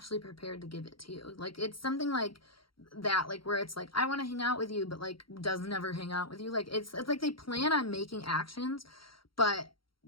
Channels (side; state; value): right; late; 0.74 ms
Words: prepared to give it to you. Like, it's something like that, like, where it's like, I want to hang out with you, but like does never hang out with you. Like, it's like they plan on making actions, but